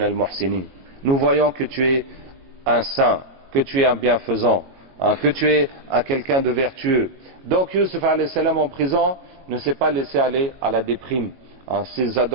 al-muhsinin. Nous voyons que tu es un saint, que tu es un bienfaisant, que tu es quelqu'un de vertueux. Donc Yusuf alayhi salam en prison ne s'est pas laissé aller à la déprime, ses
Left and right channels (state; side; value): late; left; 22 ms